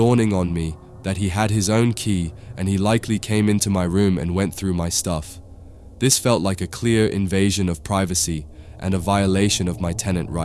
on me that he had his own key and he likely came into my room and went through my stuff. This felt like a clear invasion of privacy and a violation of my tenant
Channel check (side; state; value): both; identical; correlation 1.00